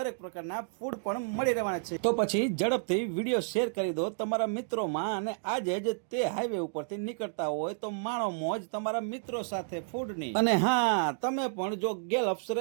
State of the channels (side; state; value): left; silent; digital silence